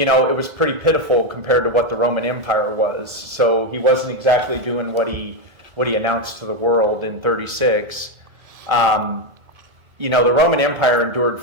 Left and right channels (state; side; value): late; left; 1.8 ms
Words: was pretty pitiful compared to what the Roman Empire was. So he wasn't exactly doing what he announced to the world in 36. The Roman Empire endured